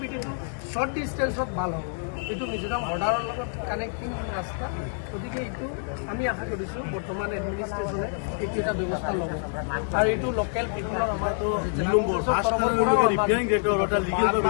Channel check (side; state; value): right; silent; 59 dB below the other